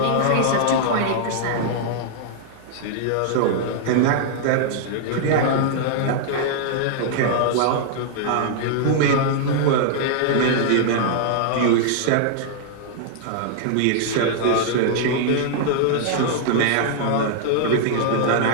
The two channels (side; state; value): both; different; correlation -0.01